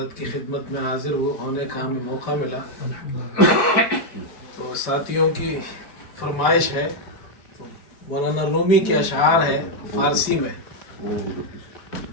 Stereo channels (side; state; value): right; late; 5.0 ms